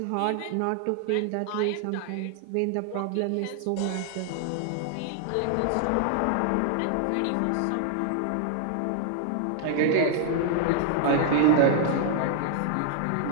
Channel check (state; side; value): different; both; correlation 0.00